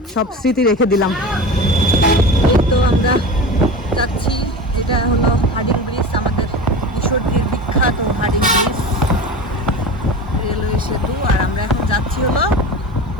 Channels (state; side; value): normal; both; correlation 0.30